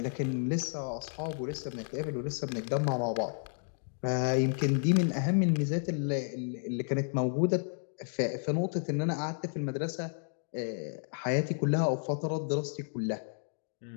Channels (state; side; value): silent; right; digital silence